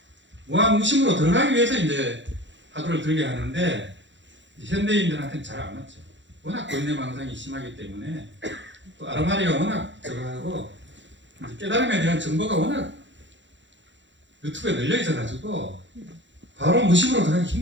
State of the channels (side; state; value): left; late; 0.54 ms